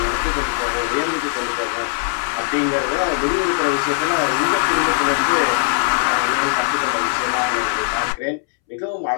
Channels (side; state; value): right; silent; 66 dB below the other